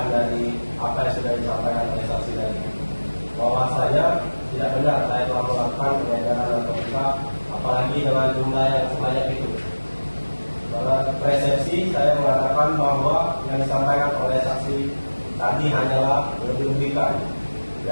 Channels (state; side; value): inverted; both; correlation -1.00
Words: dari apa yang sudah disampaikan oleh saksi tadi. Bahwasanya tidak benar saya telah melakukan peredaran narkotika, apalagi dengan jumlah yang sebanyak itu. Pada persepsi saya mengatakan bahwa yang disampaikan oleh saksi tadi hanyalah lebih-lebihkan